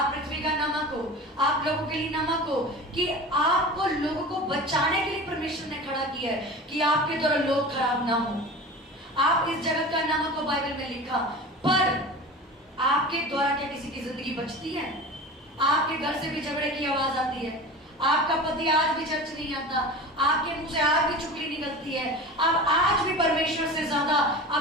पृथ्वी का नमक हो, आप लोगों के लिए नमक हो, कि आपको लोगों को बचाने के लिए परमेश्वर ने खड़ा किया है कि आपके द्वारा लोग खराब ना हो। आप इस जगत का नमक हो, बाइबल में लिखा। पर आपके द्वारा क्या किसी की जिंदगी बचती है? आपके घर से भी झगड़े की आवाज आती है, आपका पति आज भी चर्च नहीं आता, आपके मुंह से आज भी चुगली निकलती है, आप आज भी परमेश्वर से ज्यादा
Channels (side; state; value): both; normal; correlation 0.34